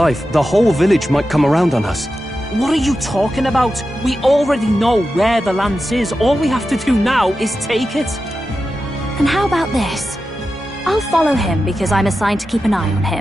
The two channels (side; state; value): both; normal; correlation 0.91